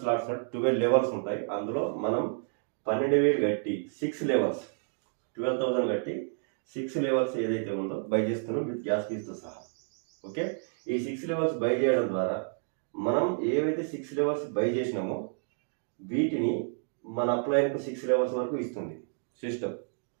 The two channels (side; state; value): left; silent; digital silence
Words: స్లాట్స్, 12 లెవెల్స్ ఉంటాయి. అందులో మనం 12,000 కట్టి 6 లెవెల్స్, 12,000 కట్టి 6 లెవెల్స్ ఏదైతే ఉందో బై చేస్తున్నాం విత్ గ్యాస్ ఫీస్తో సహా. ఓకే, ఈ 6 లెవెల్స్ బై చేయడం ద్వారా మనం ఏవైతే 6 లెవెల్స్ బై చేసినామో వీటిని మన అప్లైన్కు 6 లెవెల్స్ వరకు ఇస్తుంది సిస్టమ్.